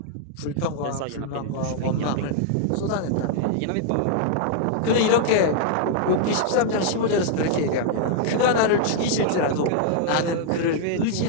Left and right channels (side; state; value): both; different; correlation -0.01